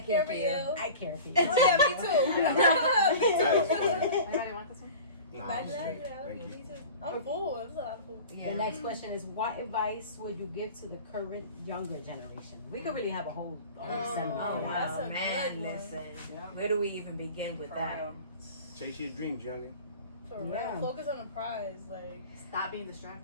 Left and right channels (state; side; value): inverted; both; correlation -0.38